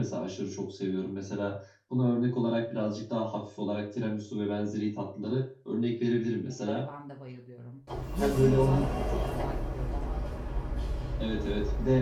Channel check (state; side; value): identical; both; correlation 1.00